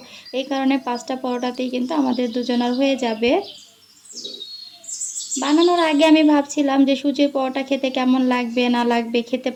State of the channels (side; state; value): both; identical; correlation 1.00